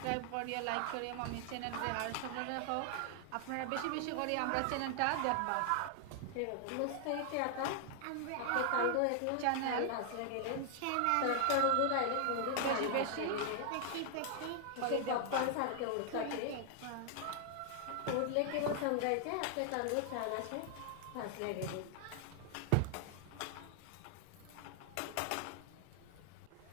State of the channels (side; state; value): both; different; correlation 0.00